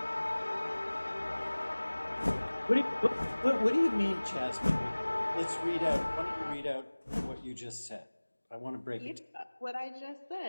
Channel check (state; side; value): inverted; both; correlation -1.00